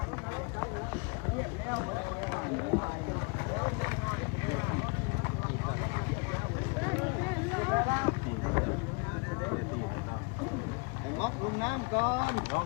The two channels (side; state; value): right; quieter; 31.9 dB